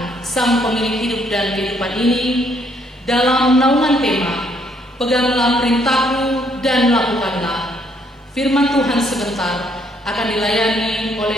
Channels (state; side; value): normal; both; correlation 0.69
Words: Sang Pemilik hidup dan kehidupan ini, dalam naungan tema Peganglah perintahku dan lakukanlah. Firman Tuhan sebentar akan dilayani